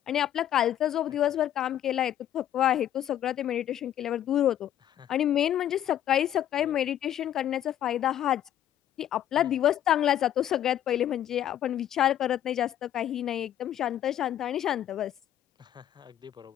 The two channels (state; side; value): quieter; right; 11.3 dB